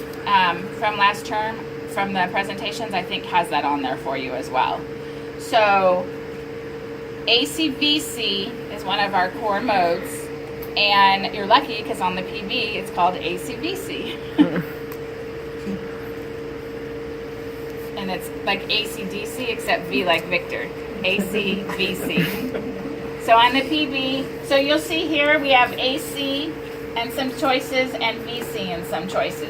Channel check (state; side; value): identical; both; correlation 1.00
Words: from last term, from the presentations, I think has that on there for you as well. So ACVC is one of our core modes, and you're lucky because on the PV it's called ACVC. And it's like ACDC except V like Victor. ACVC. So on the PV, so you'll see here we have AC and some choices and VC and some